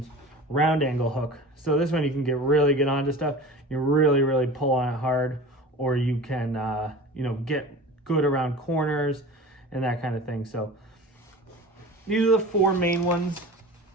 Round angle hook. So this one you can really get onto stuff. You really pull on it hard, or you can, you know, get good around corners and that kind of thing. So these are the 4 main ones,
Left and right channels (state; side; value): normal; both; correlation 0.37